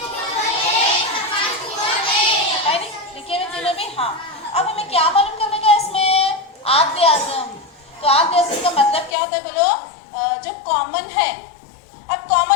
है नहीं? लिखे हुए तीनों भी, हाँ। अब हमें क्या मालूम करने का इसमें? आद्य आज़म। तो आद्य आज़म का मतलब क्या होता है बोलो? जो कॉमन है। अब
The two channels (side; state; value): right; drops out; at 9.2 s